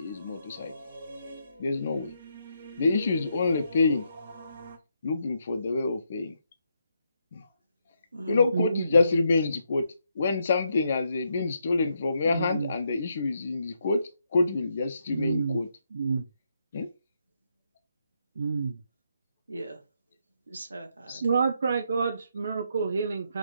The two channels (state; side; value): inverted; both; correlation -0.79